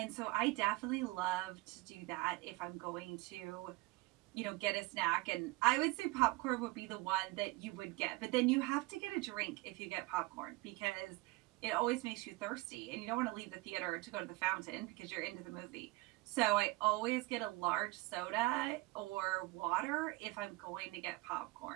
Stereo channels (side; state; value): left; quieter; 21.8 dB